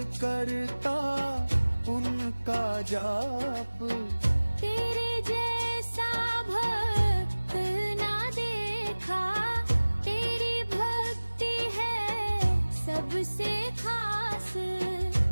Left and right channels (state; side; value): inverted; both; correlation -1.00